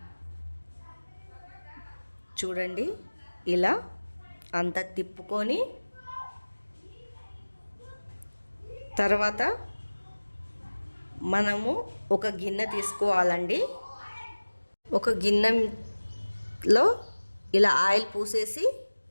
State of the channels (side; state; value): both; inverted; correlation -1.00